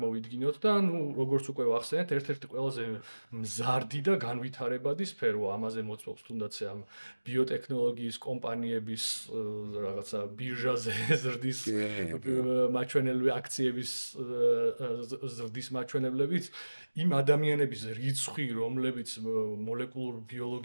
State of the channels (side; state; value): both; inverted; correlation -1.00